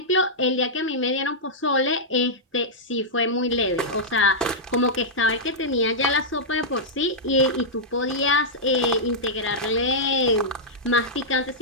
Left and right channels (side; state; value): both; normal; correlation -0.09